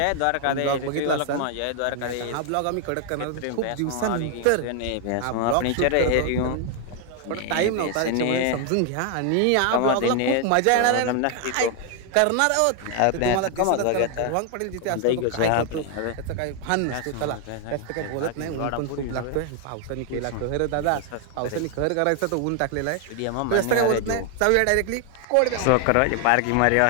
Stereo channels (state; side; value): different; both; correlation 0.00